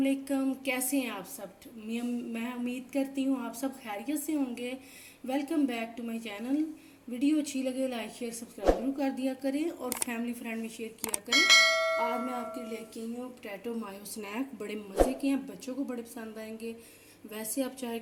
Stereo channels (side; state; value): both; identical; correlation 1.00